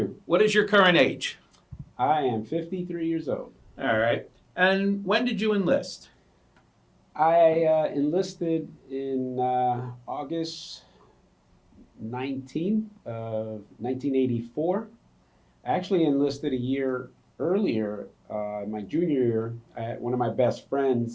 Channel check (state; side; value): identical; both; correlation 1.00